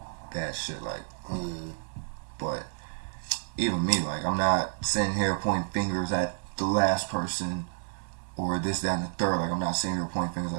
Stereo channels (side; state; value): left; silent; digital silence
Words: that shit. Like, but even me, like, I'm not sitting here pointing fingers at the last person or this, that, and the third. Like, I'm not sitting here pointing fingers